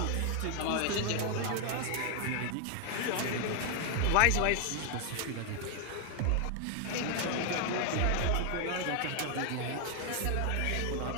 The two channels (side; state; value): both; different; correlation 0.00